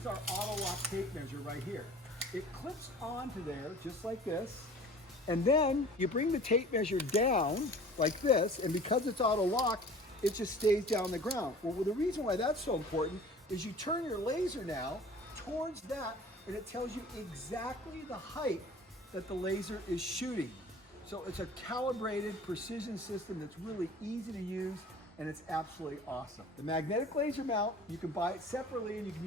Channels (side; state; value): both; normal; correlation 0.45